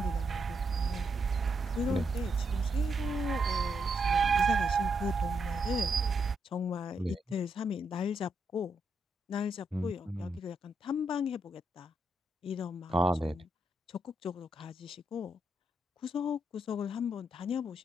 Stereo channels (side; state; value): both; normal; correlation 0.80